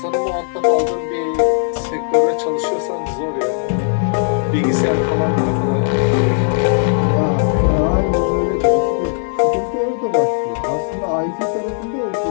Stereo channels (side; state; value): right; silent; 55 dB below the other